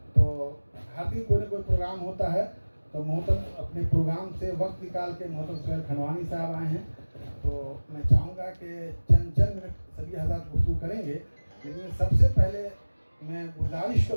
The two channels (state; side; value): inverted; both; correlation -1.00